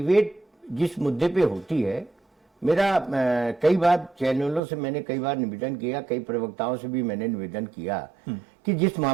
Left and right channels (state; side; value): drops out; left; at 4.6 s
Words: जिस मुद्दे पे होती है, मेरा कई बार चैनलों से मैंने कई बार निवेदन किया, कई प्रवक्ताओं से भी मैंने निवेदन किया कि जिस